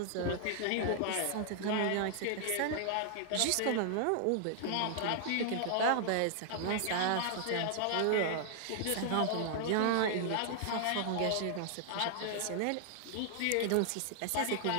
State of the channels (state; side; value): different; both; correlation 0.00